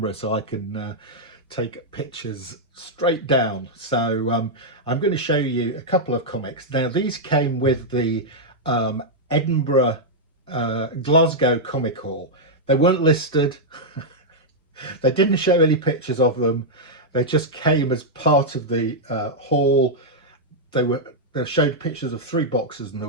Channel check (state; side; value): normal; both; correlation -0.05